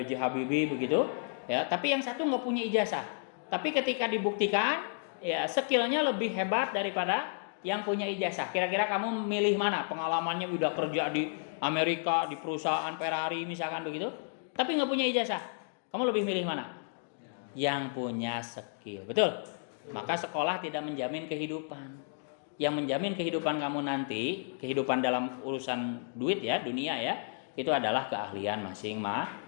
Habibie begitu ya, tapi yang satu nggak punya ijazah, tapi ketika dibuktikan ya skillnya lebih hebat daripada yang punya ijazah. Kira-kira kamu milih mana? Pengalamannya udah kerja di Amerika di perusahaan Ferrari misalkan begitu, tapi nggak punya ijazah, kamu lebih milih mana? Yang punya skill, betul. Maka sekolah tidak menjamin kehidupan. Yang menjamin kehidupan kamu nanti, kehidupan dalam urusan duit ya, dunia ya, itu adalah keahlian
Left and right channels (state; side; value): silent; right; digital silence